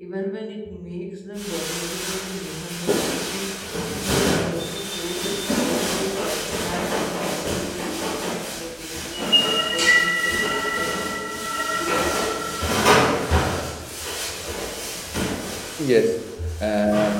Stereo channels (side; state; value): both; identical; correlation 1.00